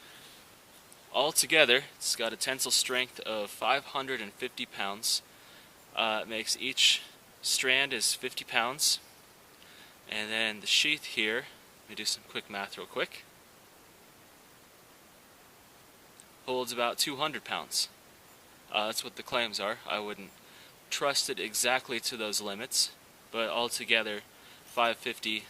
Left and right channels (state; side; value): identical; both; correlation 1.00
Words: Altogether, it's got a tensile strength of 550 pounds. It makes each strand is 50 pounds. And then the sheath here, let me do some quick math real quick, holds about 200 pounds. That's what the claims are. I wouldn't trust it exactly to those limits, but altogether 550,